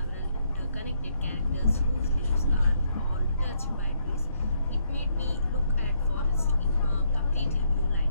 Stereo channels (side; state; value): both; inverted; correlation -0.73